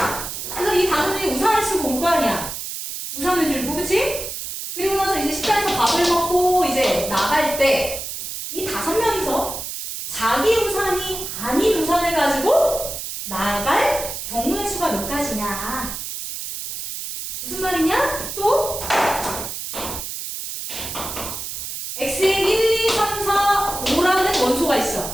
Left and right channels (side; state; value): right; noise; hiss, 7 dB below the sound